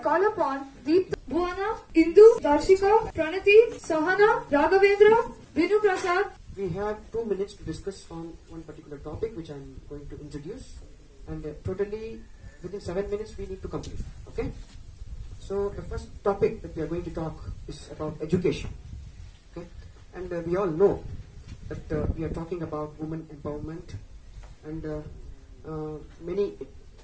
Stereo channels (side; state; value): both; identical; correlation 1.00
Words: upon Deep, Bhuwana, Indu, Darshika, Pranati, Sahana, Raghavendra, Vinu Prasad. We have 2 minutes to discuss on one particular topic which I am going to introduce, and totally within 7 minutes we need to complete. Okay? So the first topic that we are going to talk is about education. Okay? And we all know that we are talking about women empowerment, and many